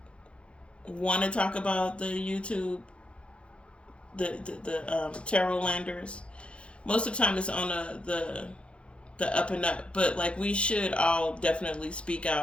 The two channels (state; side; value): late; right; 0.058 ms